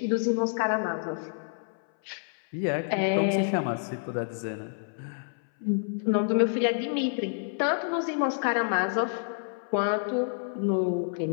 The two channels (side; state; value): right; silent; 59 dB below the other